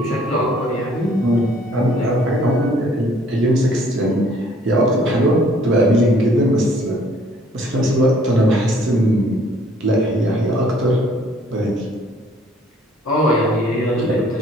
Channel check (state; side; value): normal; both; correlation 0.59